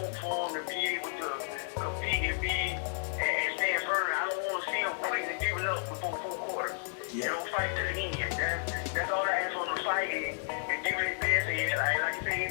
for them to be able to compete and stand firm. I don't want to see them quitting and giving up before 4 quarters. Yeah. You know, fight to the end. That's all I ask for them to fight and give it their best. And like I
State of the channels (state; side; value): silent; right; 56 dB below the other